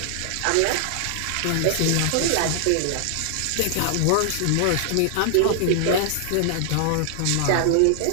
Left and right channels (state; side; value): different; both; correlation 0.00